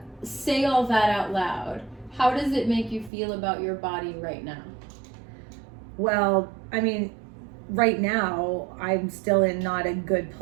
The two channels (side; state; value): left; drops out; at 3.1 s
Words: say all that out loud, how does it make you feel about your body right now? Well, I mean, right now I'm still in not a good